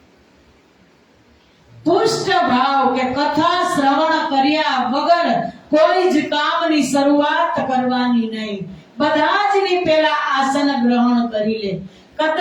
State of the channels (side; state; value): both; identical; correlation 1.00